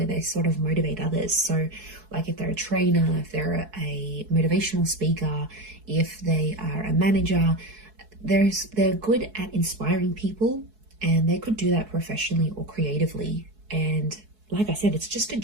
they sort of motivate others. So like if they're a trainer, if they're a motivational speaker, if they are a manager, they're good at inspiring people, and they could do that professionally or creatively. And like I said, it's just a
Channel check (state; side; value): late; left; 4.7 ms